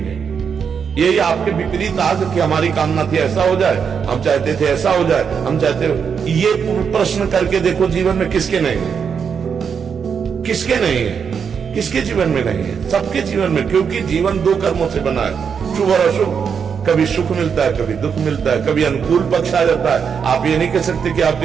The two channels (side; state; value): left; quieter; 6.7 dB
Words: यही आपके विपरीत आज कि हमारी कामना थी ऐसा हो जाए, हम चाहते थे ऐसा हो जाए, हम चाहते, ये प्रश्न करके देखो जीवन में किसके नहीं है, किसके नहीं है, किसके जीवन में नहीं है? सबके जीवन में, क्योंकि जीवन दो कर्मों से बना है, शुभ और अशुभ। कभी सुख मिलता है, कभी दुख मिलता है, कभी अनुकूल पक्ष आ जाता है। आप ये नहीं कह सकते कि